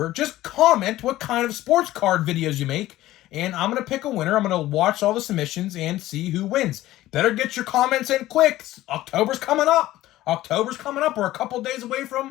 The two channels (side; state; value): right; quieter; 15.6 dB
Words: just comment what kind of sports card videos you make, and I'm going to pick a winner. I'm going to watch all the submissions and see who wins. Better get your comments in quick. October's coming up. We're a couple days away